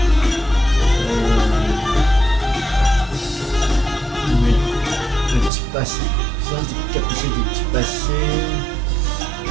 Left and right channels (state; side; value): drops out; left; at 5.5 s